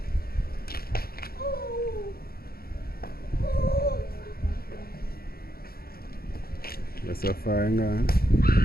That's a fire gun.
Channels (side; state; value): right; late; 0.44 ms